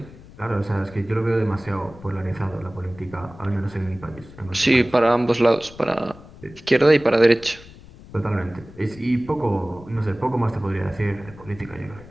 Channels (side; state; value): left; noise; rumble, 19 dB below the sound